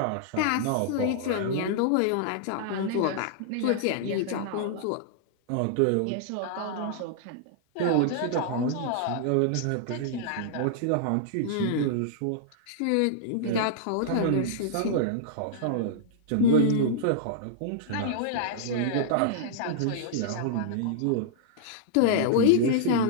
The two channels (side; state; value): both; different; correlation -0.01